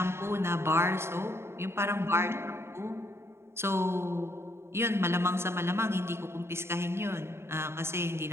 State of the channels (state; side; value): late; left; 0.12 ms